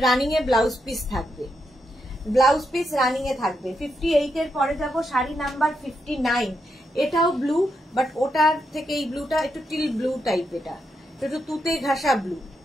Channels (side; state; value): both; normal; correlation 0.82